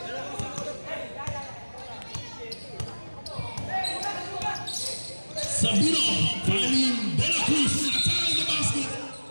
Sabino finding De La Cruz attacking the basket.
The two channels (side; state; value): both; inverted; correlation -1.00